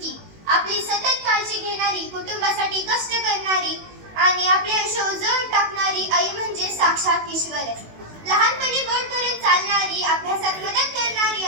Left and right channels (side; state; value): left; late; 19 ms